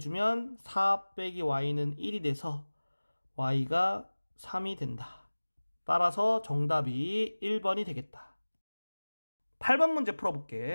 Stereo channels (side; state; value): both; inverted; correlation -1.00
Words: 4 빼기 y는 1이 돼서 y가 3이 된다. 따라서 정답이 1번이 되겠다. 8번 문제